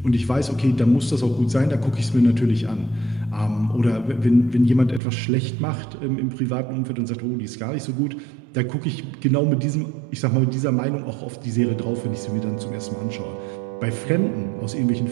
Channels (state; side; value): drops out; left; at 5.0 s